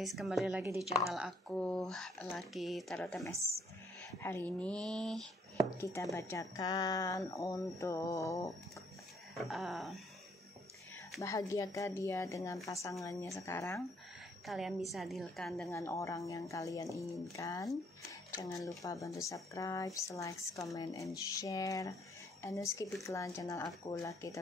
kembali lagi di channel aku Lucky Tarot MS. Hari ini kita bacakan untuk bahagiakah dia dengan pasangannya sekarang. Kalian bisa dealkan dengan orang yang kalian inginkan. Jangan lupa bantu subscribe, like, comment, and share. And skip iklan channel aku Lucky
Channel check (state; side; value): normal; both; correlation 0.67